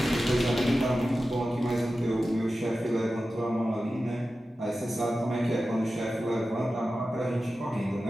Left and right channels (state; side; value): normal; both; correlation 0.93